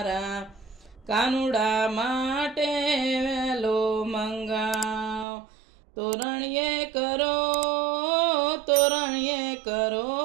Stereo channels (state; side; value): drops out; left; at 5.2 s